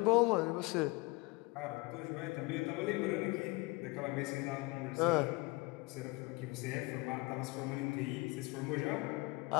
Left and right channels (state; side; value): quieter; right; 24.4 dB